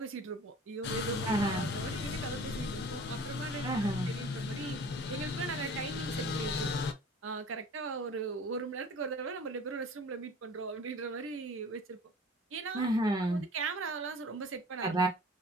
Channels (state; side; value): normal; both; correlation 0.45